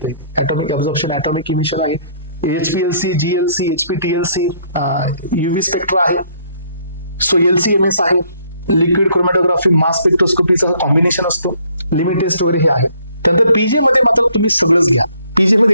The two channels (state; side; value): inverted; both; correlation -0.64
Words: ॲटॉमिक ऍब्झॉर्प्शन, ॲटॉमिक इमिशन आहे, HPLC, GLC, HPTLC, UV spectra आहे, सो LCMS आहे, लिक्विड क्रोमॅटोग्राफी, मास स्पेक्ट्रोस्कोपीचं कॉम्बिनेशन असतो, लिमिट टेस्ट वगैरे हे आहे. त्यानंतर पीजे मध्ये मात्र तुम्ही सगळंच घ्या. पीजे मध्ये